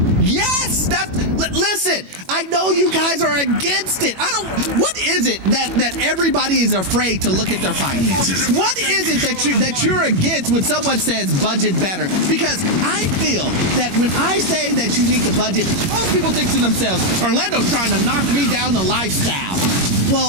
Yes, listen, I know you guys are against it. What is it that everybody is afraid to look at their finances? What is it that you're against when someone says budget better? Because I feel that when I say that you need to budget, most people think to themselves, Orlando's trying to knock me down the lifestyle.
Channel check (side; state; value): left; late; 21 ms